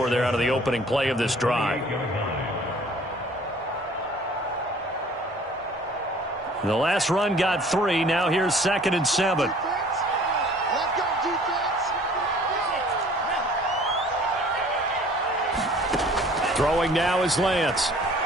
there out of the opening play of this drive. The last run got 3. Now here's 2nd and 7. Throwing now is Lance.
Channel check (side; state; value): both; normal; correlation 0.52